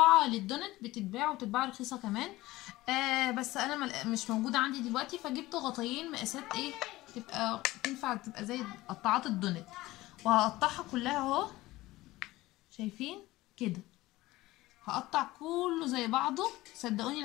للدونت بتتباع وتتباع رخيصه كمان. بس انا مش موجوده عندي دلوقتي، فجبت غطايين مقاسات ايه تبقى تنفع، تبقى زي قطاعات الدونت. وهقطعها كلها اهو. شايفين كده؟ هقطع كله زي بعضه. صدقوني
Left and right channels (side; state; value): right; quieter; 18.2 dB